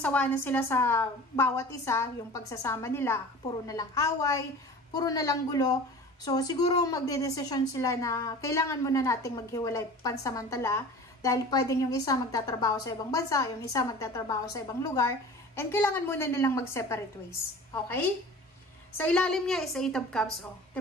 na sila sa bawat isa, yung pagsasama nila, puro na lang away, puro na lang gulo. So, siguro magdedesisyon sila na kailangan muna nating maghiwalay pansamantala dahil pwedeng yung isa magtatrabaho sa ibang bansa, yung isa magtatrabaho sa ibang lugar, and kailangan muna nilang mag-separate ways. Okay? Sa ilalim niya is 8 of Cups. Oh.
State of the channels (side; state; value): both; normal; correlation 0.39